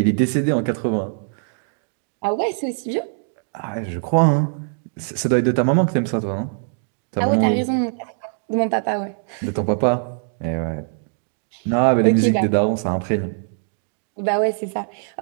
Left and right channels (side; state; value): left; silent; digital silence